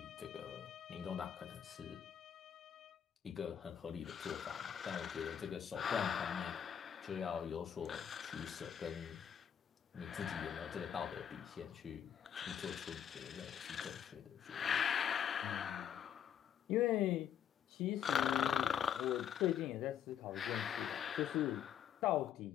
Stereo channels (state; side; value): quieter; right; 9.0 dB